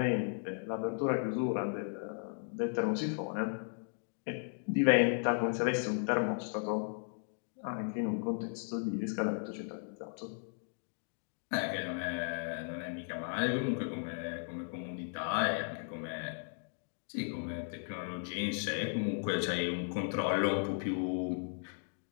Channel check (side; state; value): right; silent; 54 dB below the other